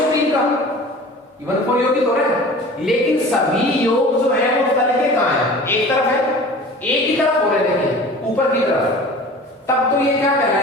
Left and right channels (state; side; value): normal; both; correlation 0.41